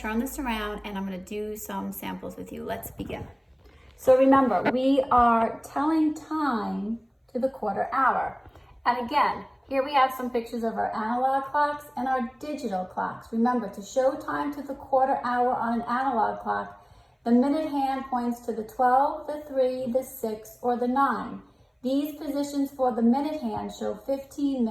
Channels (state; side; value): identical; both; correlation 1.00